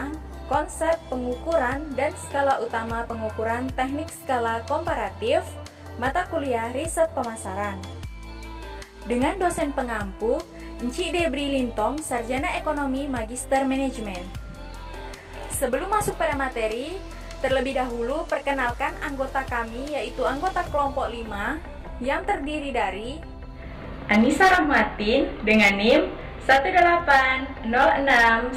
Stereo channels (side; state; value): both; identical; correlation 1.00